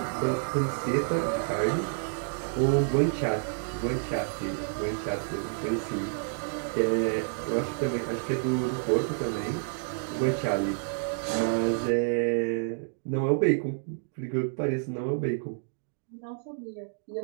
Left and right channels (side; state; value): left; silent; digital silence